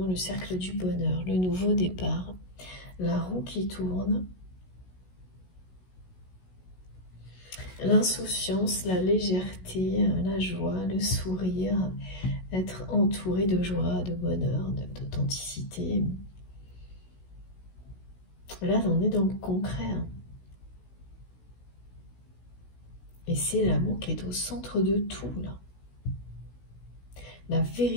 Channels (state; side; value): late; right; 16 ms